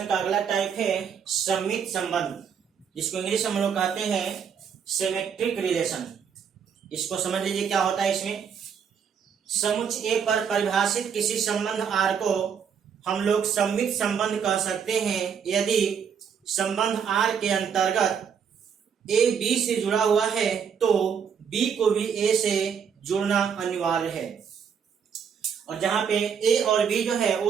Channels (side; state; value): left; quieter; 7.2 dB